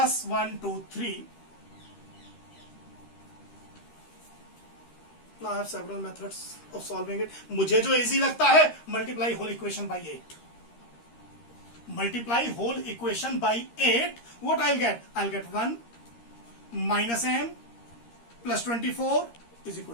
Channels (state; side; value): late; right; 13 ms